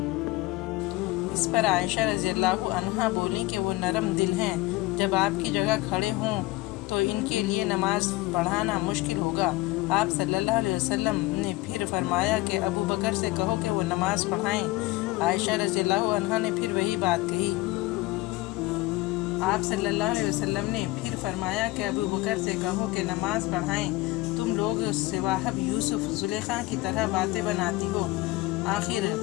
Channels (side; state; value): right; quieter; 19.3 dB